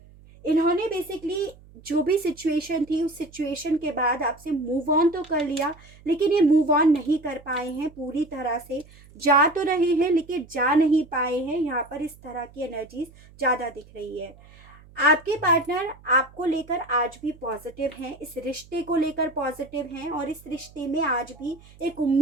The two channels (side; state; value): right; noise; hum, 24 dB below the sound